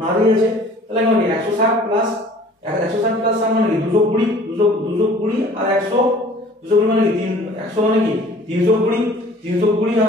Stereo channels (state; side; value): normal; both; correlation 0.50